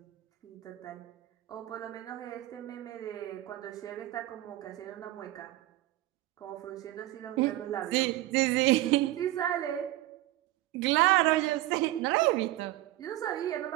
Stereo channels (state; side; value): quieter; left; 16.5 dB